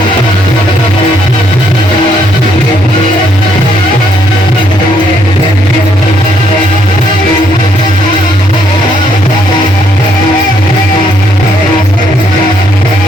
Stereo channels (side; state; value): both; normal; correlation 0.71